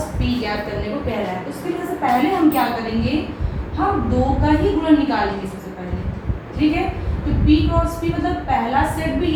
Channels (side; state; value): both; identical; correlation 1.00